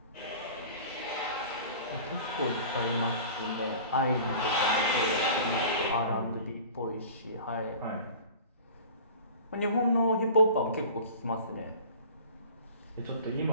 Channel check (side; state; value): both; inverted; correlation -0.42